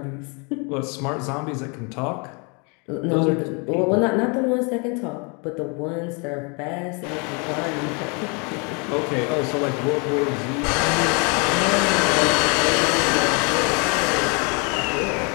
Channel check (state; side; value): quieter; right; 33.2 dB